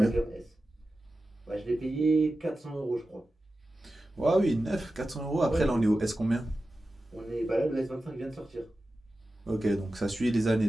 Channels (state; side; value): normal; both; correlation 0.94